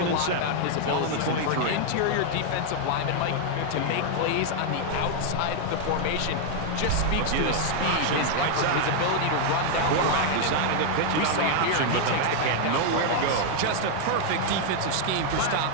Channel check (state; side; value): different; both; correlation 0.00